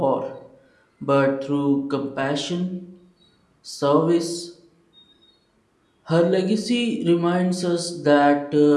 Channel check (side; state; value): both; identical; correlation 1.00